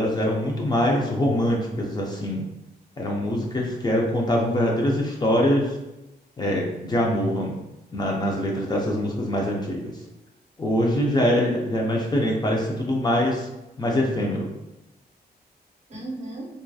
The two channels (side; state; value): both; normal; correlation 0.67